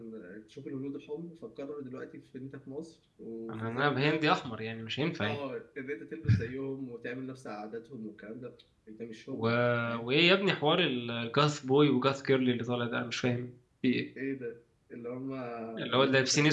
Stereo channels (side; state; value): both; identical; correlation 1.00